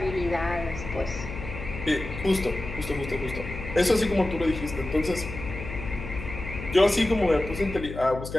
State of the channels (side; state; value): left; noise; hum, 9 dB below the sound